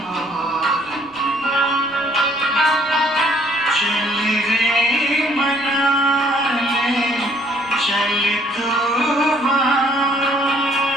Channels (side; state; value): right; noise; rumble, 29 dB below the sound